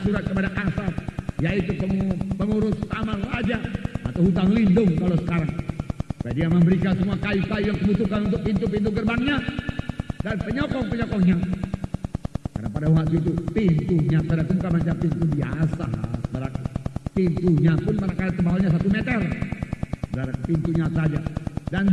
surat kepada Kasar, yaitu pengurus taman raja atau hutang lindung kalau sekarang. Supaya dia memberikan semua kayu-kayu yang dibutuhkan untuk pintu-pintu gerbangnya dan penyokong-penyokongnya. Karena pada waktu itu pintunya bukan macam pintu biasa, pintunya pun manakala tebalnya 1 meter, dari pintunya saja, dan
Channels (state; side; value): identical; both; correlation 1.00